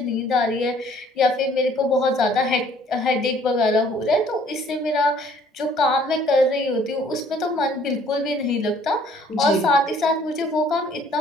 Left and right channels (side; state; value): both; normal; correlation 0.59